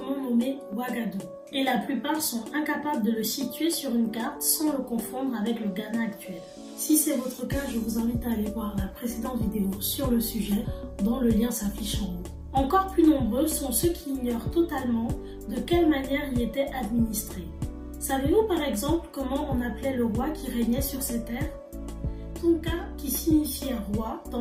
nommé Ouagadougou, et la plupart sont incapables de le situer sur une carte sans le confondre avec le Ghana actuel. Si c'est votre cas, je vous invite à aller voir la précédente vidéo sur le sujet, dont le lien s'affiche en haut. Encore plus nombreux sont ceux qui ignorent totalement de quelle manière il était administré. Savez-vous par exemple comment on appelait le roi qui régnait sur ces terres? Tonka, qui signifiait roi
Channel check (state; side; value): identical; both; correlation 1.00